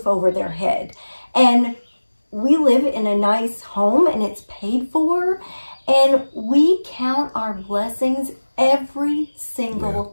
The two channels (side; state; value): both; inverted; correlation -1.00